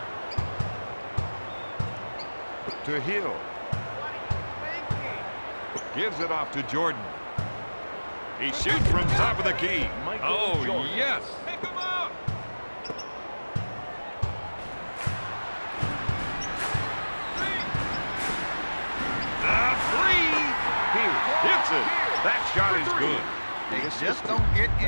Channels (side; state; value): both; inverted; correlation -1.00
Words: To Hill. Gives it off to Jordan. He shoots from top of the key. Oh, yes. Pick him up. Hits it. That shot is good. They just don't get